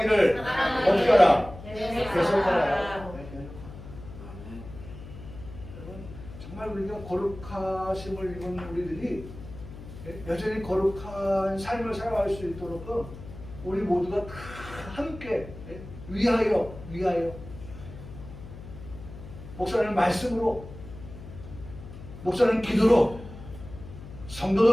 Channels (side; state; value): left; noise; hum, 14 dB below the sound